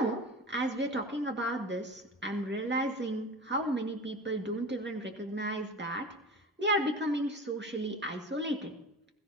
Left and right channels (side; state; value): both; normal; correlation 0.34